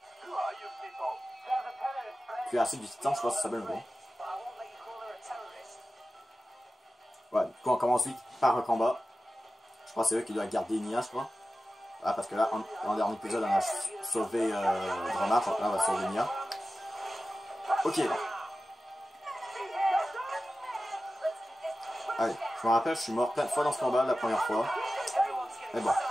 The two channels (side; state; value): both; normal; correlation 0.94